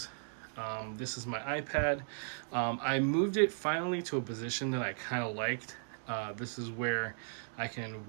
This is my iPad. I moved it finally to a position that I kind of liked. This is where I can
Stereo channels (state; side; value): silent; left; digital silence